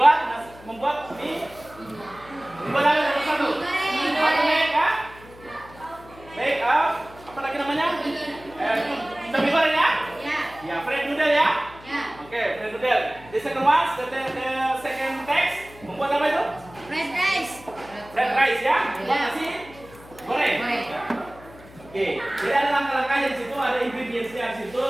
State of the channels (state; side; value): noise; left; hum, 21 dB below the sound